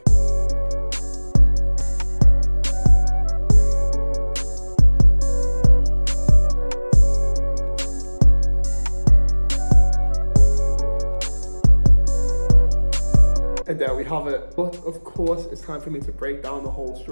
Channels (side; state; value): both; inverted; correlation -1.00